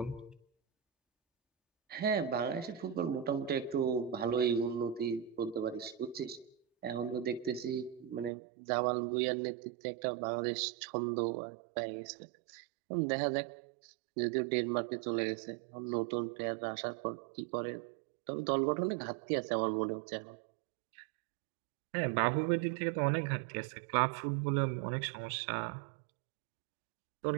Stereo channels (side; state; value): left; drops out; at 8.3 s